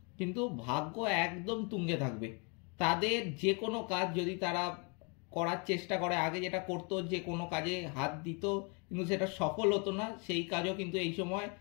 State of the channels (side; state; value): right; quieter; 34.2 dB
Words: কিন্তু ভাগ্য একদম তুঙ্গে থাকবে। তাদের যে কোনো কাজ যদি তারা করার চেষ্টা করে, আগে যেটা করতো যে কোনো কাজে হাত দিত কিন্তু সেটা সফল হতো না, সেই কাজও কিন্তু এই সময়